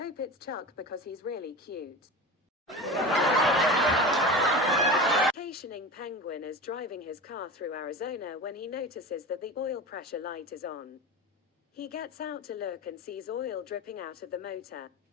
it's Chuck because he's really cute." Vacationing penguin is driving his car through Arizona when he notices that the oil pressure light is on. He gets out to look and sees oil dripping out of the motor.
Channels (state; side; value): normal; both; correlation 0.30